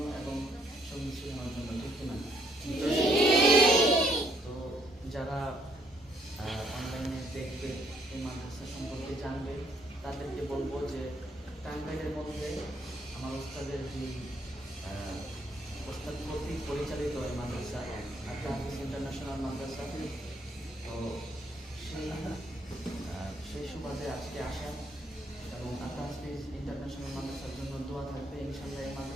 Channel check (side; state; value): both; normal; correlation 0.68